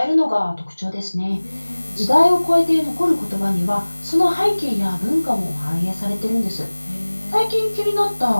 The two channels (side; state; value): both; inverted; correlation -1.00